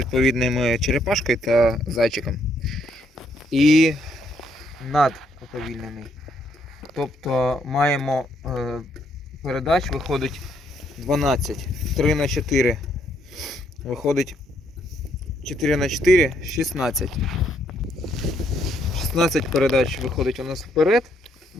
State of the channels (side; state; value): both; normal; correlation 0.72